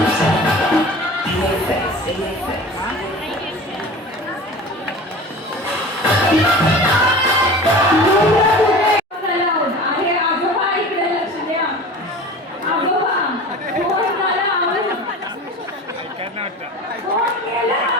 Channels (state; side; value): normal; both; correlation 0.37